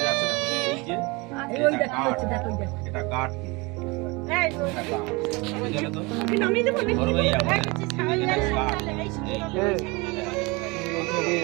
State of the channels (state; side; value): quieter; left; 26.0 dB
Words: যাচ্ছে না, এই যে এটা কাঠ, ধরবে এই